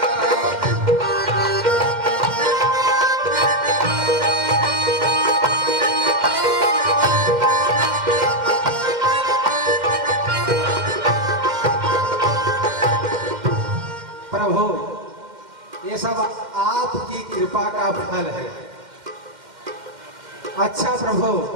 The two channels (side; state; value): left; late; 2.1 ms